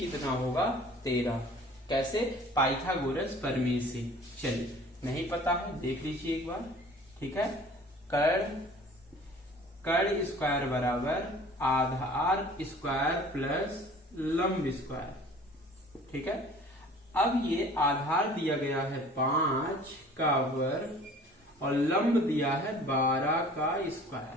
होगा 13। कैसे? पाइथागोरस प्रमेय से। चलिए, नहीं पता है देख लीजिए एक बार, ठीक है। कर्ण स्क्वायर बराबर आधार स्क्वायर प्लस लंब स्क्वायर, ठीक है। अब ये आधार दिया गया है 5 का वर्ग और लंब दिया है 12 का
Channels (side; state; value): both; normal; correlation 0.48